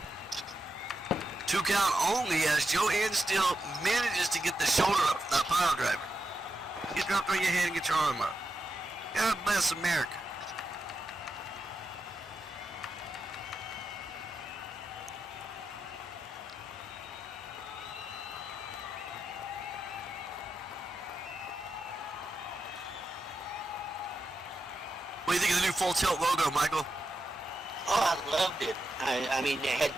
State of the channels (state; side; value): normal; both; correlation 0.87